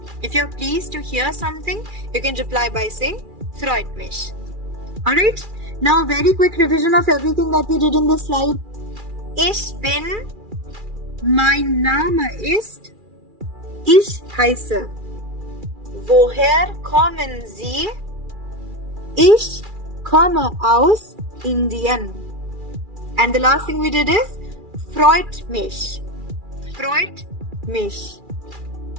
If you are pleased to hear something, you can reply by saying freut mich. Alright, now very quick revision of everything that we did in this slide. Ich bin, mein Name ist, ich heiße. Woher kommen Sie? Ich komme aus Indien. And the last thing we did is freut mich. Freut mich.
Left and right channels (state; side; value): late; left; 2.4 ms